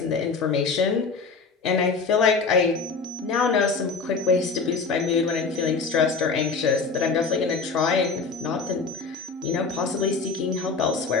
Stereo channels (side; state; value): right; quieter; 4.6 dB